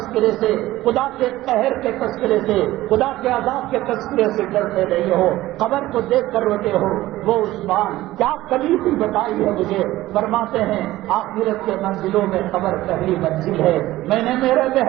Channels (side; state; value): left; quieter; 16.4 dB